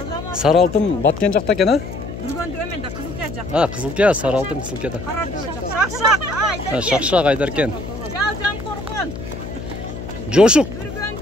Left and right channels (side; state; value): left; noise; hum, 9 dB below the sound